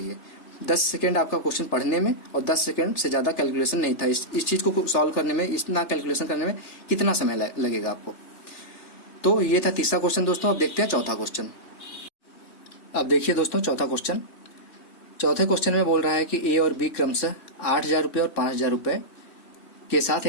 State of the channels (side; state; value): right; late; 3.5 ms